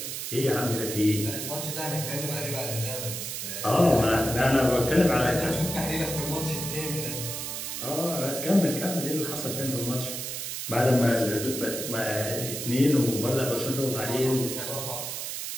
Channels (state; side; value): noise; right; hiss, 5 dB below the sound